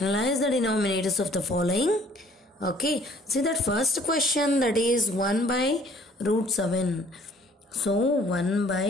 the denominators of the following. Okay, see that first question, that is 1 by root 7. So 1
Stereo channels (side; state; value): both; normal; correlation 0.57